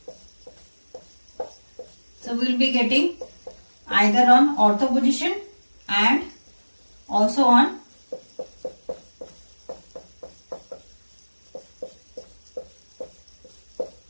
So we will be getting either on ortho position and also on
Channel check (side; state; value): both; inverted; correlation -1.00